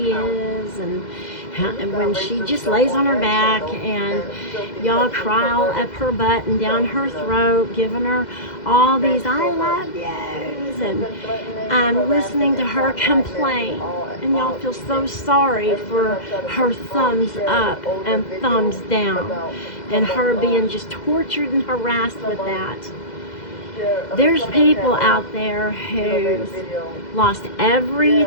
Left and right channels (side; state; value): right; late; 2.0 ms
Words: is, and when she just lays on her back and y'all cry up her butt and down her throat, giving her all these I love yous, and I'm listening to her complain, and y'all feel so sorry for her thumbs up and thumbs down and her being just tortured and harassed with that. There's people out there who lost